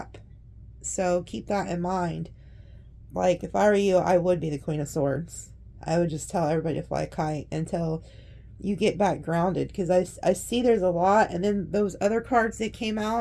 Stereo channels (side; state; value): both; identical; correlation 1.00